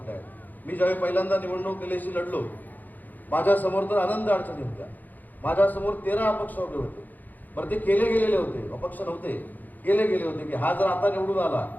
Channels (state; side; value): late; right; 0.084 ms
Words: आहेत. मी ज्यावेळी पहिल्यांदा निवडणूक केल्याशी लढलो, माझ्यासमोर तर आनंद अडचणी होत्या. माझ्यासमोर 13 अपक्ष उभे होते. बरं, ते केले गेलेले होते, अपक्ष नव्हते, केले गेले होते की हा जर आता निवडून आला